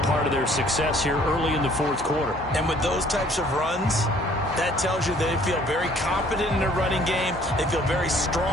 part of their success here early in the fourth quarter. And with those types of runs, that tells you they feel very confident in their running game. They feel very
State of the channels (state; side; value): normal; both; correlation 0.58